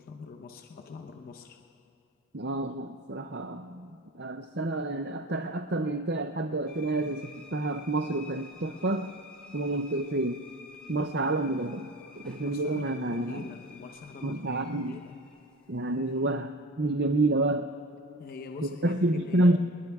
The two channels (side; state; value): both; normal; correlation 0.37